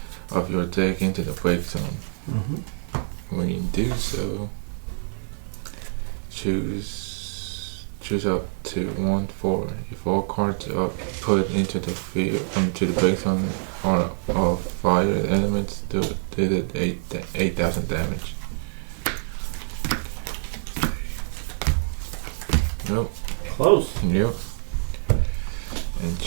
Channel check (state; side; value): silent; left; digital silence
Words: of your deck into the break zone. When you do so, choose up to 1/4. If all cards are put into the field, to the break zone are of fire elements, do the 8,000 damage. Nope. Close. Yep. And